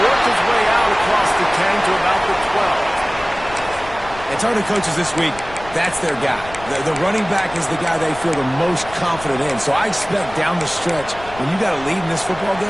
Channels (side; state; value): left; noise; rumble, 17 dB below the sound